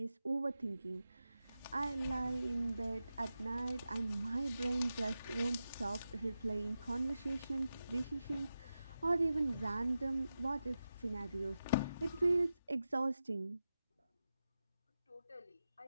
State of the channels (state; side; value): inverted; both; correlation -0.91